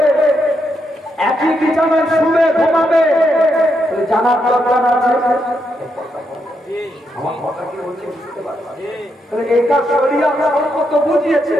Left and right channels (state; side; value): normal; both; correlation 0.80